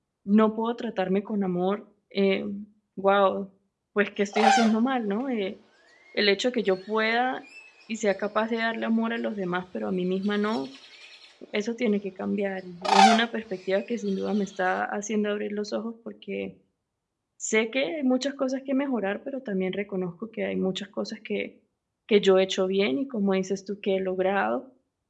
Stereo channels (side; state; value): both; identical; correlation 1.00